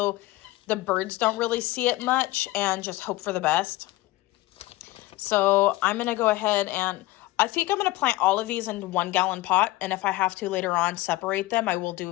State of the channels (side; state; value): right; quieter; 18.6 dB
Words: the birds don't really see it much, and just hope for the best. So I'm going to go ahead and I think I'm going to plant all of these in 1 gallon pot. And if I have to later on separate them, I will